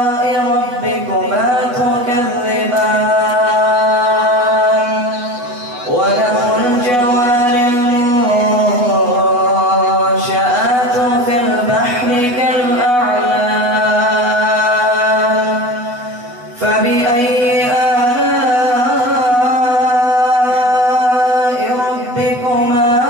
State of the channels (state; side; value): late; left; 8.2 ms